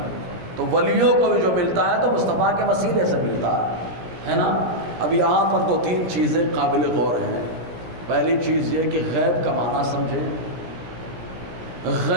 تو ولیوں کو بھی جو ملتا ہے تو مصطفیٰ کے وسیلے سے ملتا ہے نا۔ اب یہاں پر دو تین چیزیں قابل غور ہیں۔ پہلی چیز یہ کہ غیب کا معنی سمجھیں۔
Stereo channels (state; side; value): late; left; 17 ms